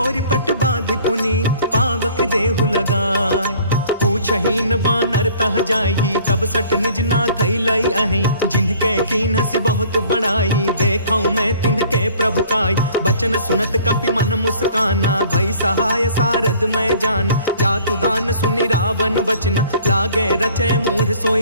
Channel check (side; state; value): both; inverted; correlation -0.53